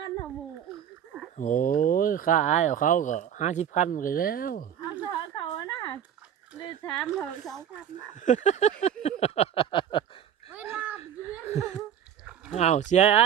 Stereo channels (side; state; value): left; quieter; 9.3 dB